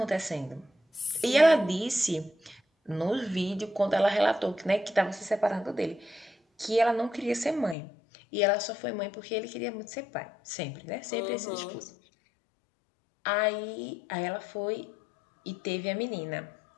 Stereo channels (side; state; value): right; drops out; at 7.8 s